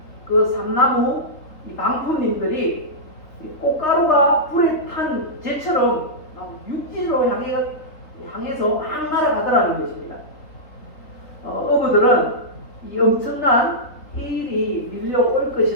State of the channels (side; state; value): right; late; 3.6 ms